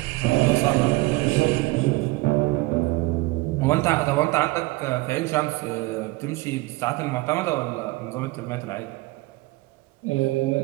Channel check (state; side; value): quieter; left; 21.4 dB